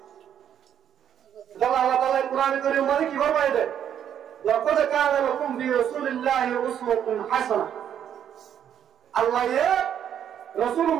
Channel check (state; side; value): quieter; left; 9.4 dB